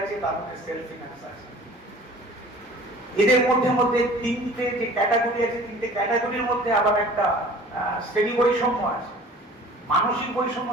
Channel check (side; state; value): both; normal; correlation 0.46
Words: আছে, তার মধ্যে সেলফ ফিনান্স আছে। এদের মধ্যে তিনটে যে ক্যাটাগরি আছে, তিনটে ক্যাটাগরির মধ্যে আবার একটা শ্রেণী বৈষম্য আছে। মানসিক বৈষম্য